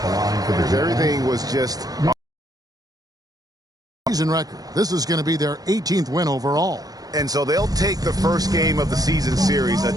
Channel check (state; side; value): late; left; 0.18 ms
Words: Everything was just... Season record. This is going to be their 18th win overall. And so they'll take the first game of the season series, a